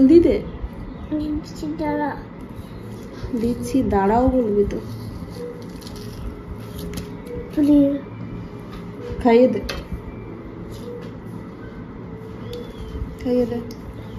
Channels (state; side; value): identical; both; correlation 1.00